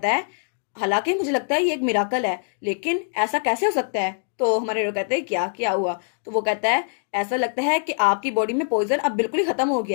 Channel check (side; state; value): right; silent; digital silence